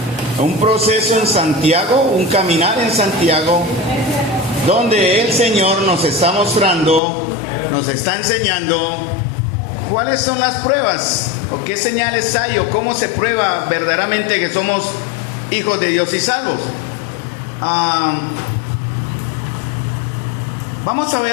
un proceso en Santiago, un caminar en Santiago, donde el Señor nos está mostrando, nos está enseñando cuáles son las pruebas, o qué señales hay, o cómo se prueba verdaderamente que somos hijos de Dios y salvos. Vamos a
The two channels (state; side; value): drops out; right; at 7.0 s